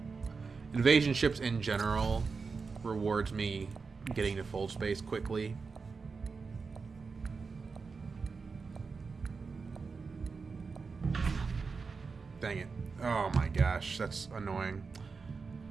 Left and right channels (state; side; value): quieter; left; 4.8 dB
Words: Invasion ships in general rewards me getting to fold space quickly. Dang it. Oh my gosh, that's annoying.